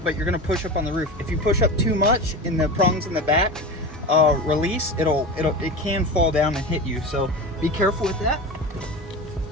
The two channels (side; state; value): both; normal; correlation 0.27